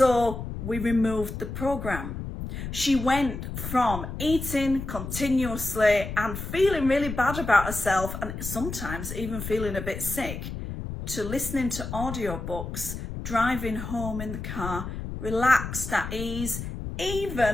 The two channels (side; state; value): left; noise; rumble, 7 dB below the sound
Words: we removed the program. She went from eating continuously and feeling really bad about herself, and sometimes even feeling a bit sick, to listening to audiobooks, driving home in the car, relaxed, at ease,